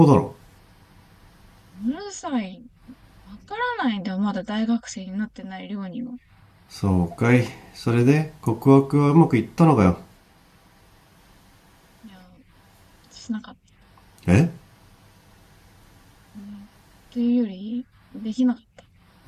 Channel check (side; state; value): both; identical; correlation 1.00